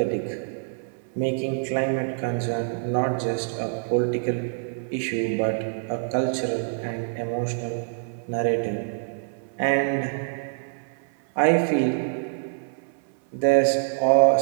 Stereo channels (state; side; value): silent; left; 58 dB below the other